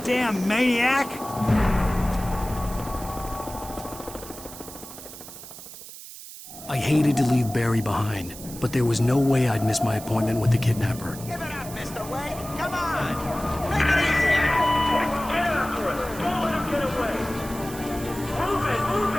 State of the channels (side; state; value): right; noise; hiss, 14 dB below the sound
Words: maniac! I hated to leave Barry behind, but there was no way I'd miss my appointment with the kidnapper. Give it up, Mr. Wake! Come on! Make it easy! Get after it! Don't let him get away! Move it! Move